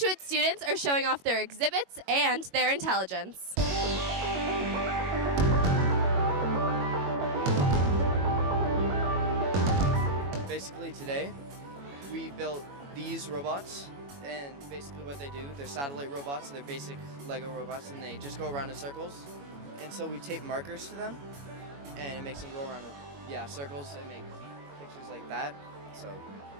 students are showing off their exhibits and their intelligence. Basically today, we built these robots, and basically what they do, they're satellite robots, they're basic Lego robots, and they just go around in circles. And so we tape markers to them, and it makes them go around in circles and make pictures like that. So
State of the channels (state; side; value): late; left; 21 ms